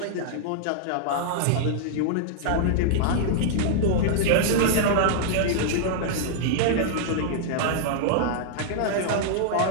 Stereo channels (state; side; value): different; both; correlation -0.01